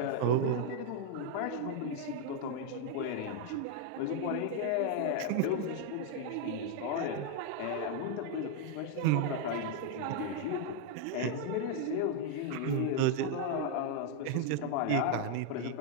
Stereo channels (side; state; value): both; different; correlation 0.00